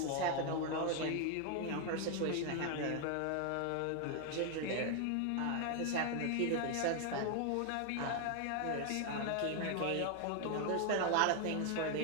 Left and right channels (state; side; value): different; both; correlation 0.00